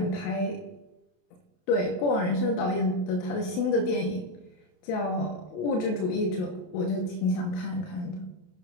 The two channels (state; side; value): late; right; 28 ms